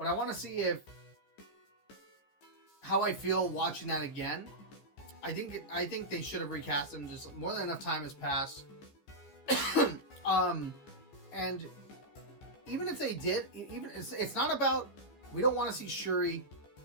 I want to see how I feel watching that again. I think they should have recast him. Just more than enough time has passed. And even if they did, it's not about, we don't want to see Shuri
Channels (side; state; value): right; late; 14 ms